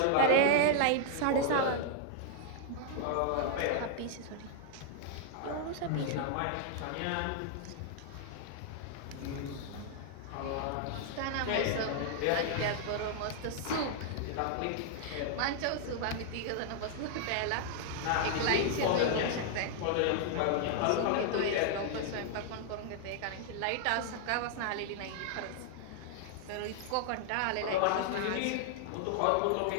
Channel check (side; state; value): both; different; correlation -0.01